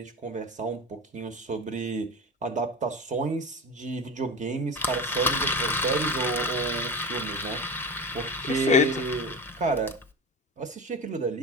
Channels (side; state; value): both; normal; correlation 0.27